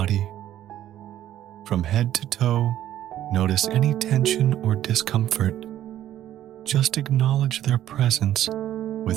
From head to toe, notice any tension or discomfort. Just acknowledge their presence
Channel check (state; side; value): quieter; left; 12.2 dB